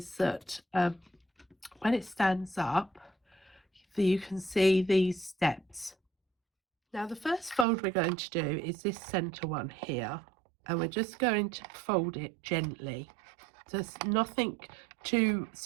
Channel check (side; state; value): left; drops out; at 7.7 s